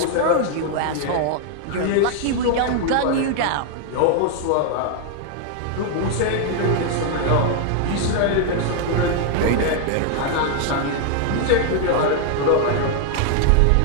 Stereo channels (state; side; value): different; both; correlation 0.00